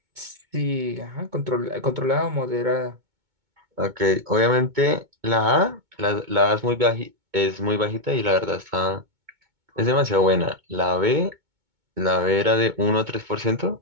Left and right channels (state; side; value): late; left; 2.2 ms